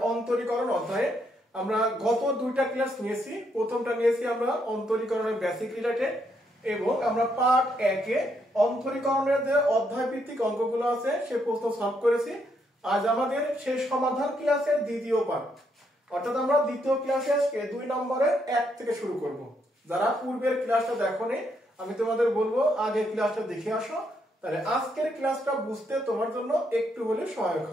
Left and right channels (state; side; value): normal; both; correlation 0.76